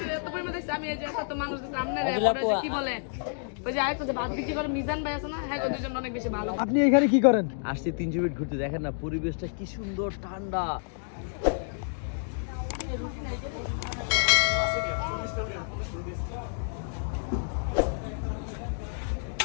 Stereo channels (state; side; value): silent; right; digital silence